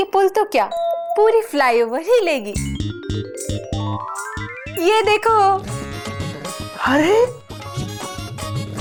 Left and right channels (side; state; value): both; identical; correlation 1.00